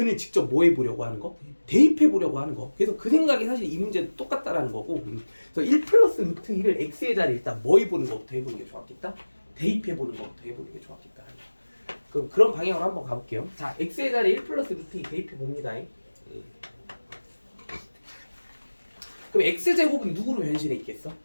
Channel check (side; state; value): both; inverted; correlation -1.00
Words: 직접 뭐 해보려고 하는 거? 대입해보려고 하는 거. 그래서 그 생각이 사실 이 문제도 똑같다라는 거고. 그래서 1 플러스 루트 2를 x의 자리에 일단 뭐 해보는 것부터 해보는 게 좋았겠다? 대입해보는 것부터 해보는 게 좋았겠다. 그럼 그런 방향으로 한번 가볼게요. 자, x의 자리에 1 플러스 루트 2 대입해봅니다. 그럼 x제곱은 누구로 변신해 있겠어?